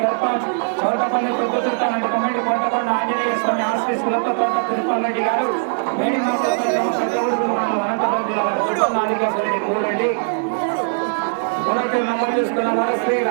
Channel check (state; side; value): silent; left; digital silence